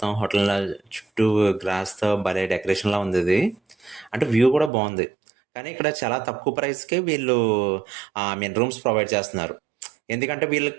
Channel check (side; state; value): left; drops out; at 4.7 s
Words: హోటల్ చుట్టూ గ్రాస్తో భలే డెకరేషన్లా ఉంది ఇది. అంటే వ్యూ కూడా బాగుంది. కానీ ఇక్కడ చాలా తక్కువ ప్రైస్కే వీళ్ళు రూమ్స్ ప్రొవైడ్ చేస్తున్నారు. ఎందుకంటే